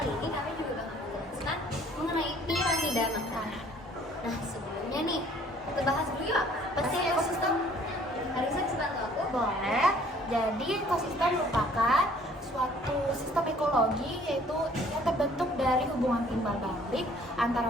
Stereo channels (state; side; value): normal; both; correlation 0.57